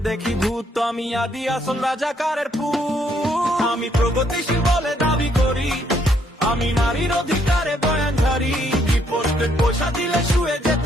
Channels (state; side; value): normal; both; correlation 0.70